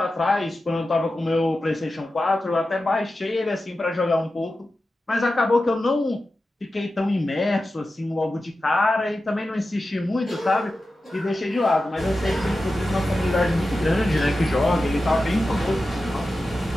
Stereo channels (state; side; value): normal; both; correlation 0.93